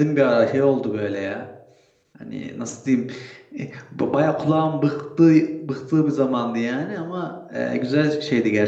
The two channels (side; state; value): both; identical; correlation 1.00